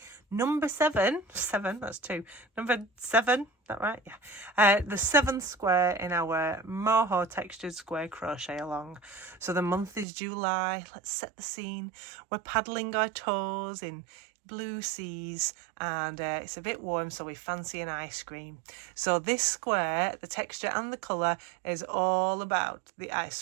number 7, that's 2, number 7, that right? Yeah. The 7th square in our Moho textured square crochet along. So the month is July. Let's set the scene. We're paddling our toes in blue seas and it's a bit warm, so we fancy an ice cream. So this square, the texture and the colour is all about the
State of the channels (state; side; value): drops out; left; at 10.1 s